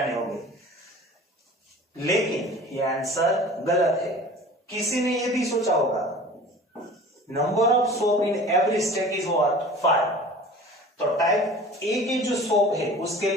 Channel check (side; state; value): both; normal; correlation 0.42